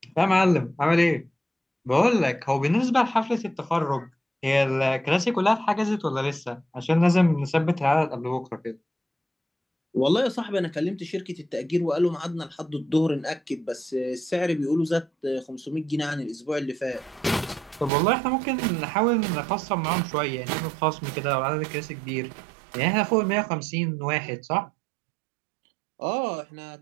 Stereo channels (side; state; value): left; drops out; at 17.9 s